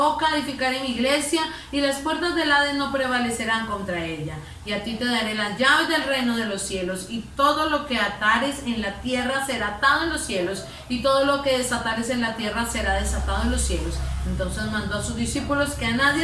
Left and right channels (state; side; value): identical; both; correlation 1.00